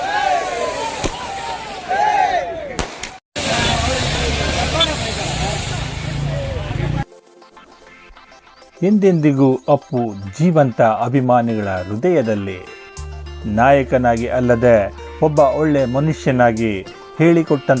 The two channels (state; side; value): identical; both; correlation 1.00